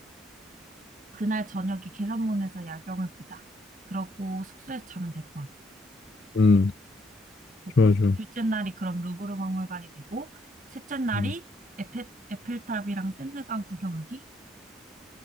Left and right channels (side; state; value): both; normal; correlation 0.73